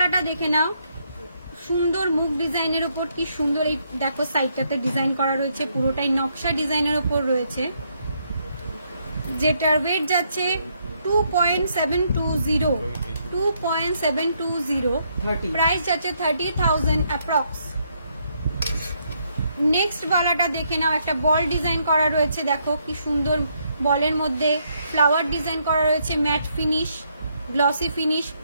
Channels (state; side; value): inverted; both; correlation -0.74